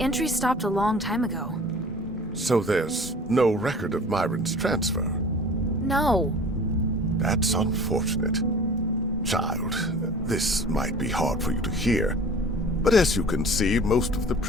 entry stopped a long time ago. So there's no record of Myron's transfer? No. That's unfortunate. Child, this might be hard for you to hear, but as you can see, most of the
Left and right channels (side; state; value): both; normal; correlation 0.44